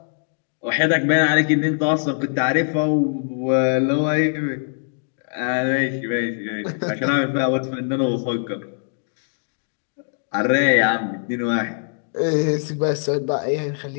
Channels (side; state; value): right; silent; digital silence